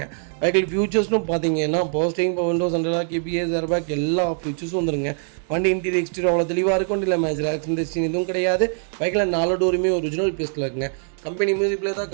வெஹிக்கிள் ஃபியூச்சர்ஸ்னு பார்த்தீங்கன்னா power steering, power windows, central lock, ABS, airbag எல்லா ஃபியூச்சர்ஸும் வந்துருங்க. வண்டி இன்டீரியர் எக்ஸ்டீரியர் அவ்வளோ தெளிவாக இருக்கும். இல்லை மேஜர் ஆக்சிடென்ட் ஹிஸ்டரி எதுவும் கிடையாது. வெஹிக்கிள் 4 டோருமே ஒரிஜினல் பேஸில் இருக்குங்க. கம்பெனி மியூசிக் பிளேயர் தான்,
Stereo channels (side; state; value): left; silent; 60 dB below the other